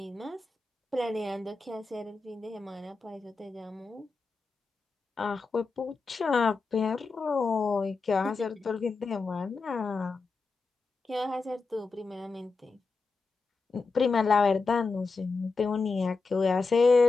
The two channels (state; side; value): quieter; right; 4.1 dB